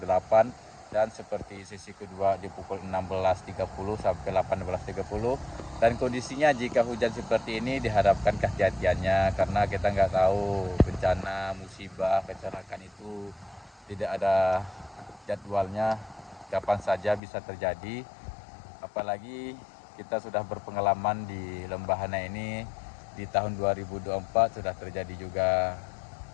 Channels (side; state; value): right; drops out; at 17.2 s